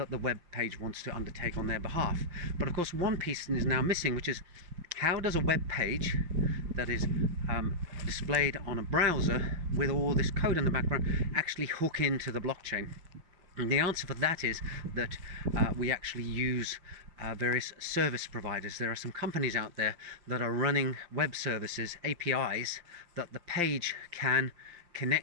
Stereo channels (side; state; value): left; late; 5.7 ms